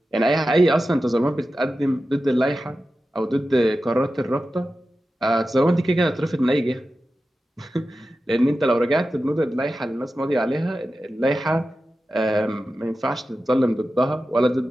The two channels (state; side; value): normal; both; correlation 0.93